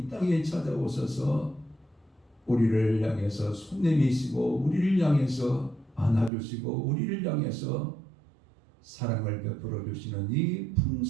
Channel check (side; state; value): left; drops out; at 6.3 s